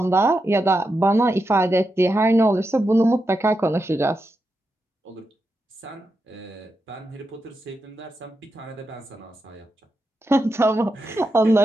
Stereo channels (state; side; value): normal; both; correlation 0.87